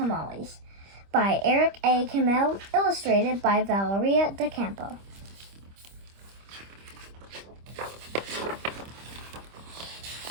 by Eric A. Kimmel, illustrated by Valeria Docampo.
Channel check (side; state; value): left; late; 25 ms